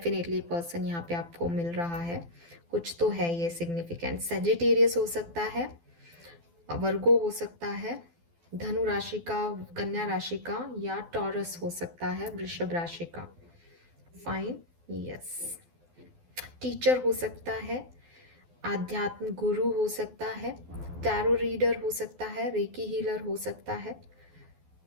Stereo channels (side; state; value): left; late; 12 ms